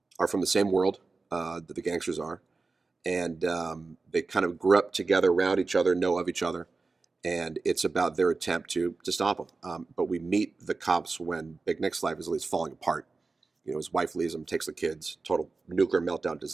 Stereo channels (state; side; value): quieter; left; 3.9 dB